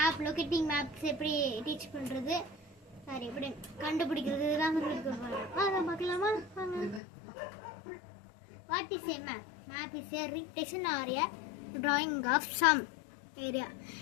லொகேட்டிங் மேப்ஸ் எப்படி டீச் பண்றது சாரி எப்படி கண்டுபிடிக்கிறது இதெல்லாம் சொல்லி கொடுப்பாங்க. வாங்க பார்க்கலாமா? வாங்க. What is a map? Map is a representation or a drawing of some area.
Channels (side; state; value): right; drops out; at 7.0 s